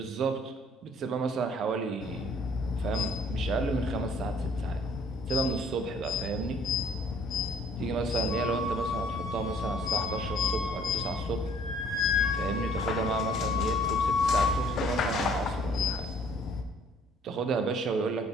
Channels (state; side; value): normal; both; correlation 0.59